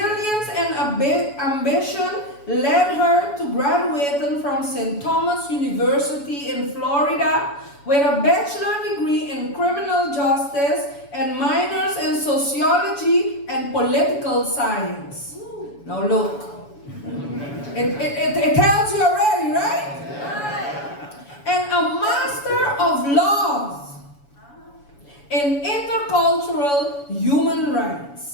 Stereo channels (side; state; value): right; late; 7.1 ms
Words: and ambition led her to graduating from St. Thomas University in Florida with a bachelor degree in criminal justice and minors in sociology and political science. Now look, it tells you already, right? And a master of laws in intercultural human